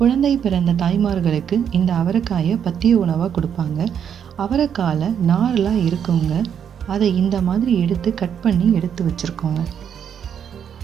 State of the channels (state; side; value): quieter; left; 8.3 dB